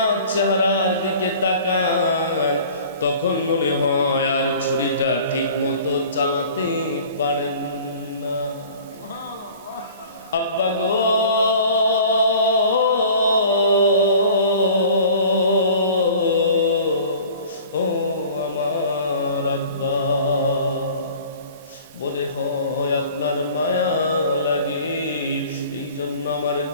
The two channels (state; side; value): inverted; both; correlation -0.46